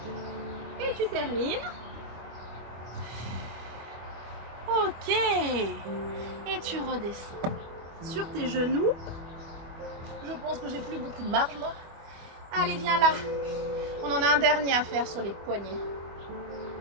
Et tu termines. Ok. Et tu redescends sur tes genoux. Je pense que j'ai plus beaucoup de marge, moi. Allez, viens là. On en a un dernier à faire sur les poignets.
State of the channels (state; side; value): late; left; 25 ms